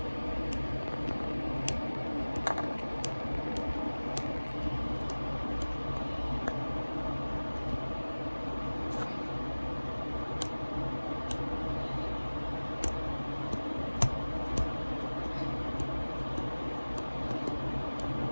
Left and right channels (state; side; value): inverted; both; correlation -1.00